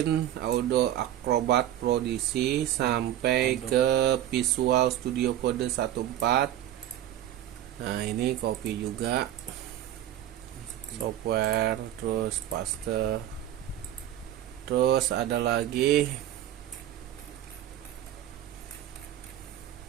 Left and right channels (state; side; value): quieter; left; 12.2 dB